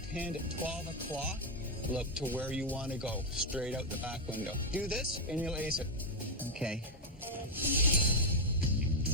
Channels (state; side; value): normal; both; correlation 0.03